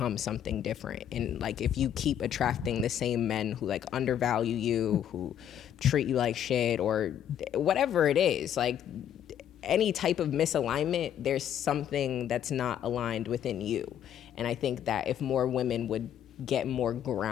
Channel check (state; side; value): quieter; right; 9.9 dB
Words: something different. And like, if you keep attracting the same men who like undervalue you, who treat you like shit, or whatever it is, like any type of misalignment, there's something that's not aligned within you. And I think that if more women would get more